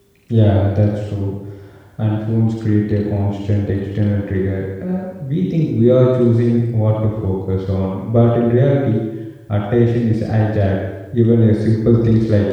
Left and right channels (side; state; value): both; identical; correlation 1.00